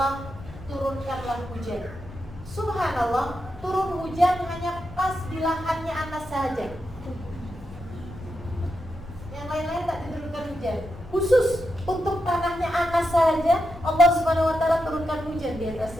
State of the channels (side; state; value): left; noise; hum, 20 dB below the sound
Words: turunkanlah hujan. Subhanallah, turun hujan hanya pas di lahannya Anas saja. Yang lain-lain tak diturunkan hujan. Khusus untuk tanahnya Anas saja Allah Subhanahu wa taala turunkan hujan di